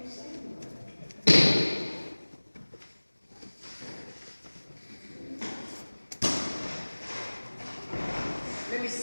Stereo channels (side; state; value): both; inverted; correlation -1.00